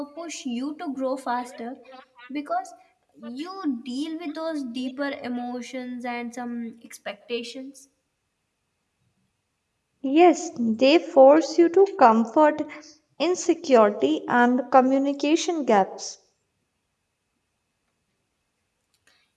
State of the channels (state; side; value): identical; both; correlation 1.00